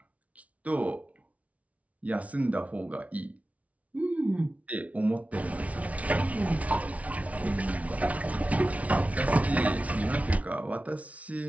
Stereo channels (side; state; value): left; late; 0.067 ms